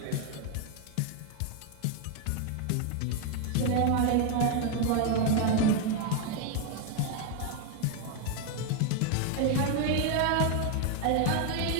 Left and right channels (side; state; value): both; different; correlation 0.01